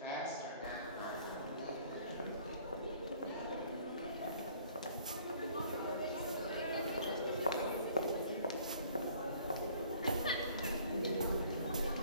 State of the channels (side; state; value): both; inverted; correlation -0.56